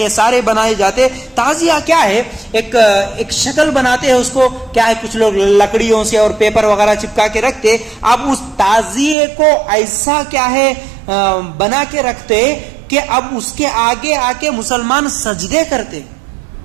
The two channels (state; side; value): drops out; left; at 9.2 s